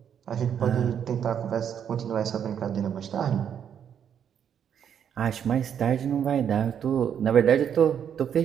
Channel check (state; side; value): quieter; left; 8.5 dB